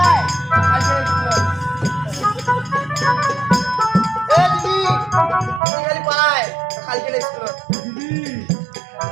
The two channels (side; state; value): left; drops out; at 5.6 s